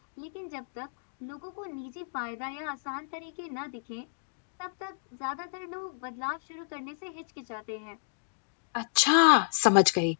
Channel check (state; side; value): silent; right; digital silence